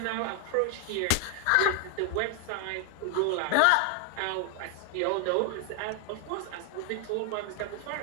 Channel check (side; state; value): both; different; correlation 0.00